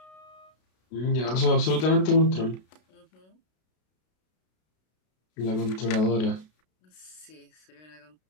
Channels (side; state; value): right; late; 32 ms